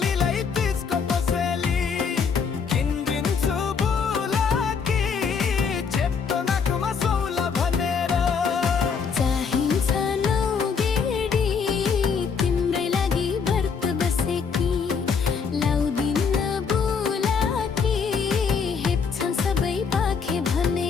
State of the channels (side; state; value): right; quieter; 5.9 dB